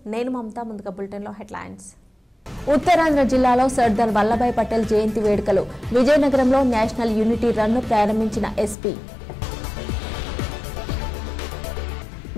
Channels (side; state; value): right; drops out; at 8.8 s